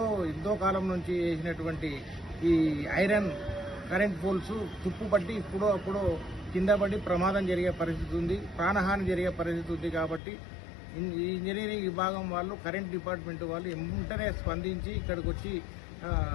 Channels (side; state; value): right; drops out; at 10.2 s